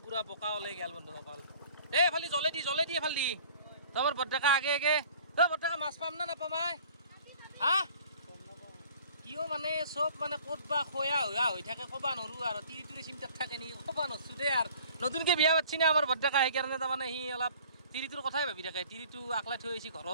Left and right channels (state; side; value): inverted; both; correlation -0.51